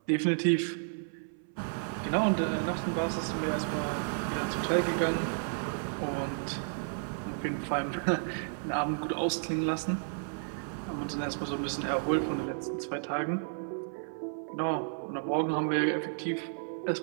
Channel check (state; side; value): silent; left; 56 dB below the other